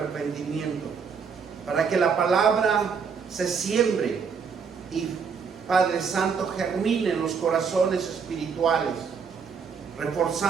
para que la palabra se siembre y, Padre Santo, germine en los corazones espirituales,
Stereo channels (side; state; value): left; quieter; 6.0 dB